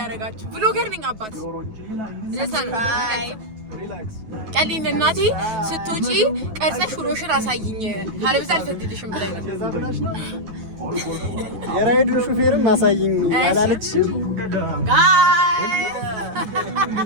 ብሎገር ነኝ አባት ለሰን ሪላክስ ቀሊን እናቴ ስትወጪ ቀርጸሽ ውሎሽን አሳይኝ ካለበዛ አልፈቅድልሽም ብላኝ ነው የራይዱ ሹፌርም አሳይኝ አላለችም ጋይስ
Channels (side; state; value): left; late; 9.3 ms